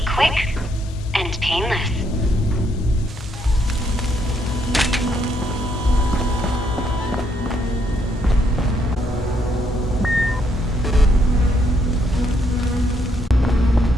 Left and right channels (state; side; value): normal; both; correlation 0.73